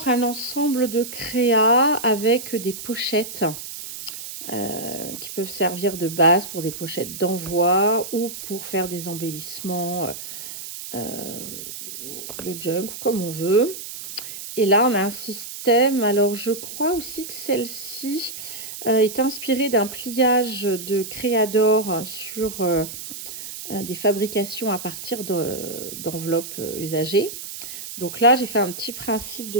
un ensemble de créas avec des pochettes qui peuvent servir de base pour des pochettes d'envoi ou pour faire des embellissements de junk, comme on veut. Et là, on a un système. Alors, je crois aussi que celle-ci est inspirée d'un pliage de Créador sur des fabrications à partir d'enveloppes usagées. Donc là, j'ai fait un petit principe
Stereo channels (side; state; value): right; noise; hiss, 10 dB below the sound